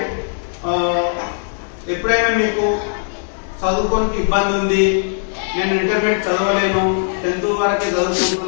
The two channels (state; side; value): silent; right; digital silence